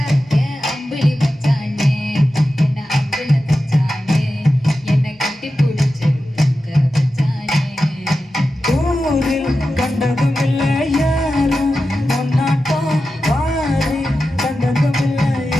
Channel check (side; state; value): both; normal; correlation 0.92